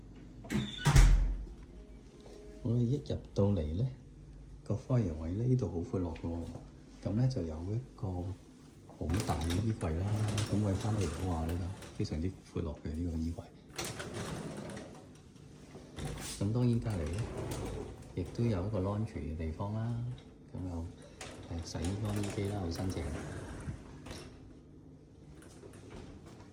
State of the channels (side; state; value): both; identical; correlation 1.00